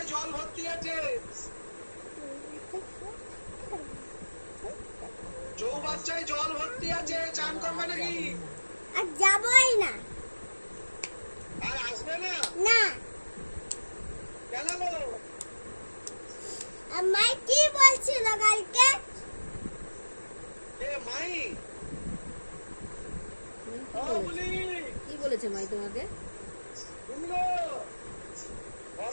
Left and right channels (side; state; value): both; inverted; correlation -1.00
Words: জল ভর্তি আছে। চৌবাচ্চায় জল ভর্তি আছে, চান করবে নাকি? আর যাবই না। আর আসবে না? না। কেন গো? আমায় কি বলছিল কালকে? এ মাই ও বলি কি বলেছে মাই তোমাকে? শুনলো